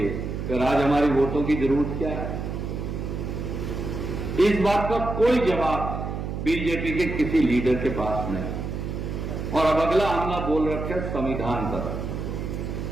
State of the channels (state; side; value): noise; right; hum, 5 dB below the sound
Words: फिर आज हमारी वोटों की जरूरत क्या है? इस बात का कोई जवाब बीजेपी के किसी लीडर के पास नहीं। और अब अगला हमला बोल रखे संविधान